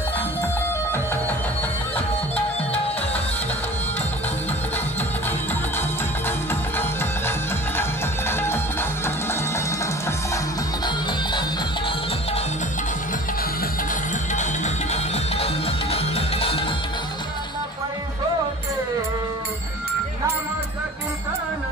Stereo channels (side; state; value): both; normal; correlation 0.43